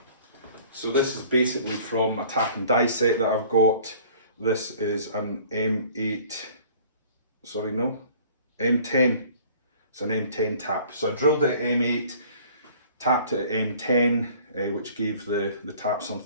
So this is basically from a tap and die set that I've got. This is an M10. It's an M10 tap. So I drilled it at M8, tapped it at M10, which gave the tap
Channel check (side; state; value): both; inverted; correlation -0.51